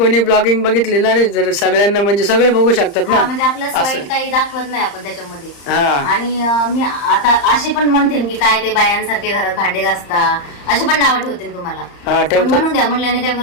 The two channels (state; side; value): late; right; 35 ms